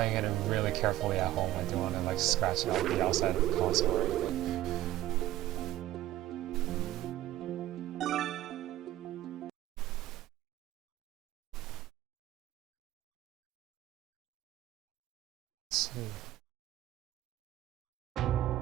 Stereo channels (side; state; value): left; quieter; 14.7 dB